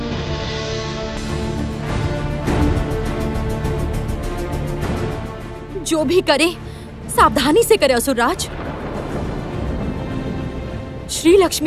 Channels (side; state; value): both; identical; correlation 1.00